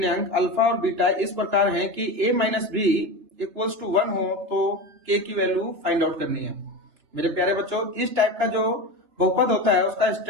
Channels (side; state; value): left; late; 3.3 ms